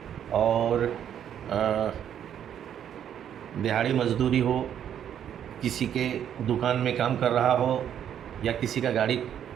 और दिहाड़ी मजदूरी हो, किसी के दुकान में काम कर रहा हो या किसी का गाड़ी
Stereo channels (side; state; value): left; quieter; 9.6 dB